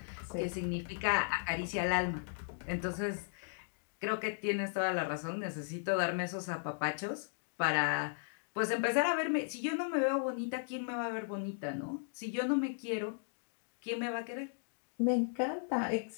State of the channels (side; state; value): right; silent; digital silence